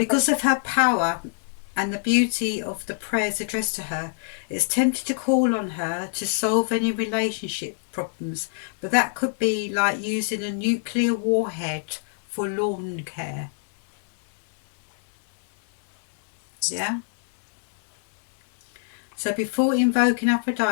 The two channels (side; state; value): right; silent; 62 dB below the other